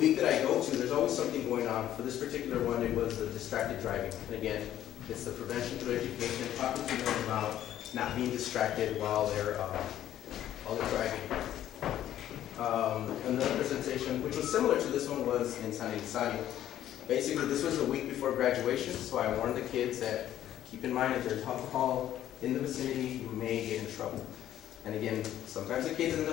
that I go to, there's always something going on. For this particular one, it was the distracted driving. And again, it's the prevention through education, talking to them about not being distracted while they're driving. Another presentation, which was similar to this one, was in San Elizario. Basically, this was a week before graduation, so I warned the kids that keep in mind if there's alcohol in the vicinity, you may get in trouble. And again, sometimes the kids end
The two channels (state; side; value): quieter; right; 11.9 dB